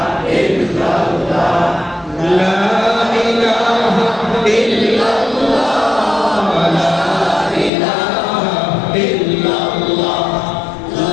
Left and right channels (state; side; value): drops out; right; at 7.7 s